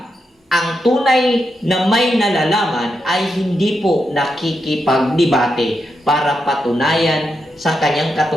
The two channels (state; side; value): normal; both; correlation 0.84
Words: ang tunay na may nalalaman ay hindi po nakikipagdebate para patunayan sa kanyang